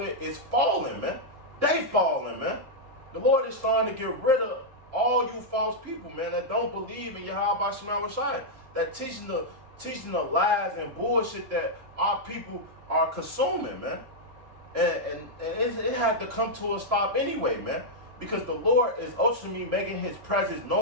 is falling, man. They falling, man. The Lord is starting to get rid of all you false people, man, that don't believe in Yahweh Shema Shai, that teaching the lies and bullshit that our people are consuming, man. And it had to come to a stop anyway, man. Because the Lord is ultimately making his presence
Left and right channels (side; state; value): left; late; 3.7 ms